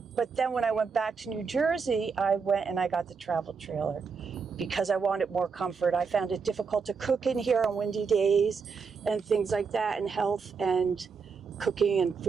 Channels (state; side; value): quieter; left; 5.4 dB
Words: but then when I went back to New Jersey, I went and I got the travel trailer because I wanted more comfort. I found it difficult to cook in here on windy days and things like that, and health and cooking and